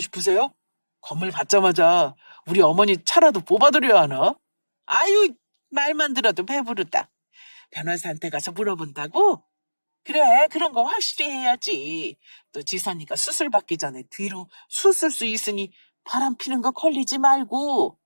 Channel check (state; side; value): inverted; both; correlation -1.00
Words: 건물 받자마자 우리 어머니 차라도 뽑아드려야 하나? 아유, 말만 들어도 배부르다. 변호사한테 가서 물어본다고? 그래, 그런 거 확실히 해야지. 또 지선이가 수술 받기 전에 뒤로 수술 수 있으니 바람 피는 거 걸리지 말고